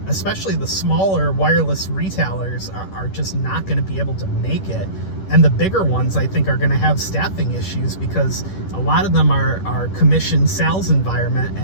especially the smaller wireless retailers, are just not going to be able to make it. And the bigger ones, I think, are going to have staffing issues because a lot of them are commission sales environment.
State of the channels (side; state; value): right; late; 10 ms